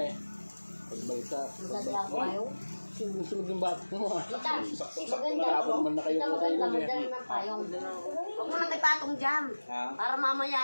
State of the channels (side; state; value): both; inverted; correlation -1.00